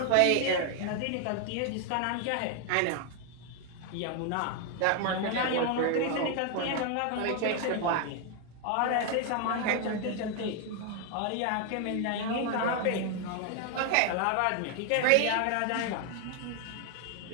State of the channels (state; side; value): different; both; correlation 0.00